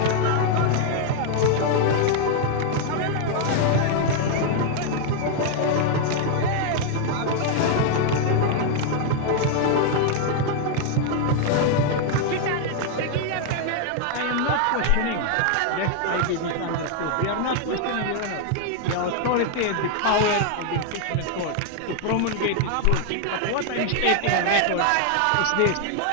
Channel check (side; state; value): both; different; correlation 0.00